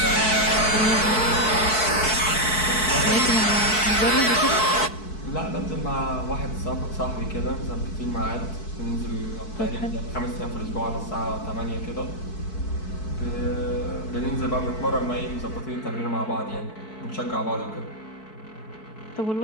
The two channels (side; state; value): right; late; 4.6 ms